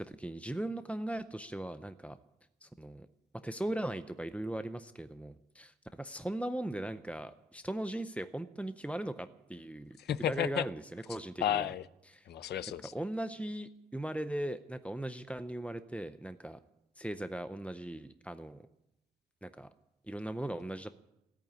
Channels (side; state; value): both; normal; correlation 0.72